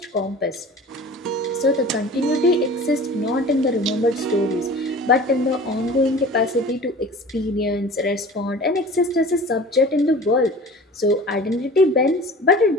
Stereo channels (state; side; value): normal; both; correlation 0.41